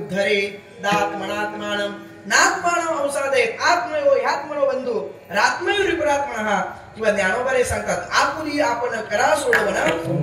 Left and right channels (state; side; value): identical; both; correlation 1.00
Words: दात्मनात्मानं नात्मानं औषधेत आत्मयो ह्यात्मनो बंधू रात्मयो विपरात्मनः. किंवा ज्ञानोबारे सांगतात, आपुली आपण करा